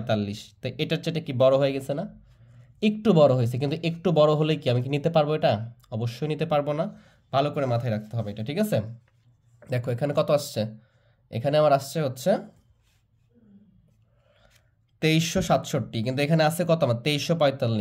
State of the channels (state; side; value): identical; both; correlation 1.00